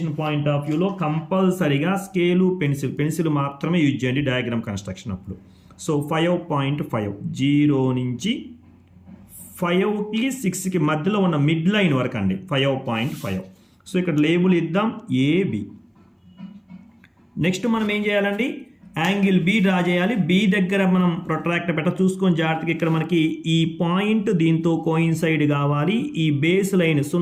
పాయింట్ ఆఫ్ వ్యూలో కంపల్సరీగా స్కేలు పెన్సిల్ మాత్రమే యూజ్ చేయండి డయాగ్రామ్ కన్స్ట్రక్షన్ అప్పుడు. సో 5.5, 0 నుంచి 5కి 6కి మధ్యలో ఉన్న మిడ్ లైన్ వరకు అండి 5.5. సో ఇక్కడ లేబుల్ ఇద్దాం ఏబి. నెక్స్ట్ మనం ఏం చేయాలండి? యాంగిల్ బి డ్రా చేయాలి. బి దగ్గర మనం ప్రొట్రాక్టర్ చూసుకొని జాగ్రత్తగా ఇక్కడ మనకి ఈ పాయింట్ దీంతో కోయిన్సైడ్ కావాలి. ఈ బేస్ లైన్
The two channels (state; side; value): identical; both; correlation 1.00